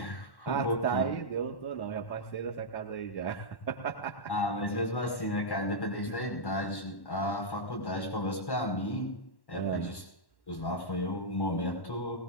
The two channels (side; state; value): right; late; 1.1 ms